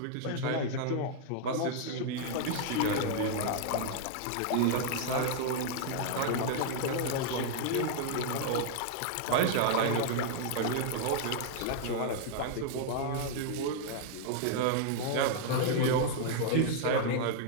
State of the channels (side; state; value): both; different; correlation -0.01